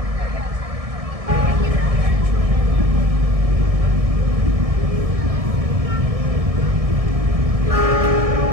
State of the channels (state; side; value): late; left; 1.7 ms